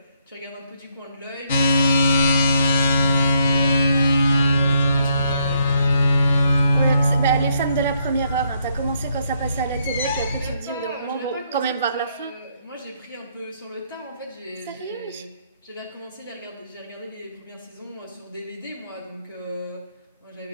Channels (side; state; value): both; inverted; correlation -0.73